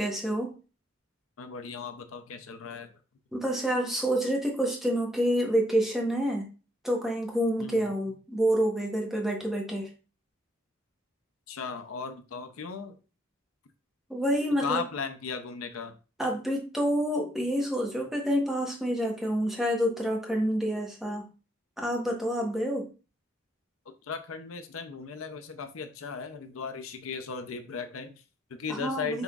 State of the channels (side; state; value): both; normal; correlation 0.72